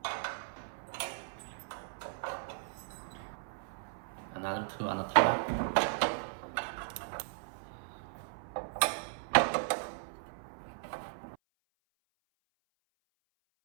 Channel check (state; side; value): silent; left; 53 dB below the other